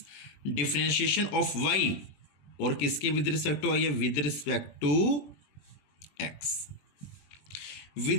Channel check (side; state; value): right; late; 20 ms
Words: डिफ्रेंशिएशन ऑफ वाई, और किसके विद रिस्पेक्ट टू आई है, with respect to X.